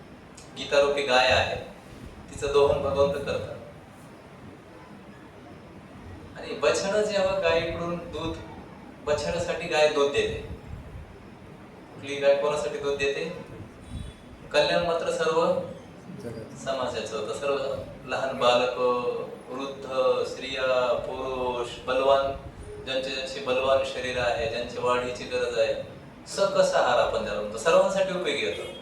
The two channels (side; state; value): both; identical; correlation 1.00